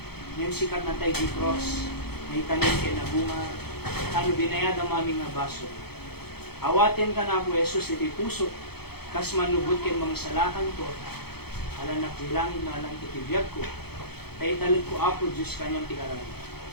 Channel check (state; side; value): late; right; 0.96 ms